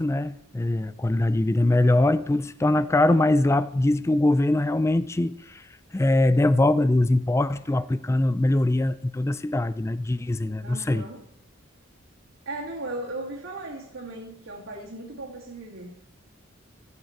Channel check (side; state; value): both; normal; correlation 0.90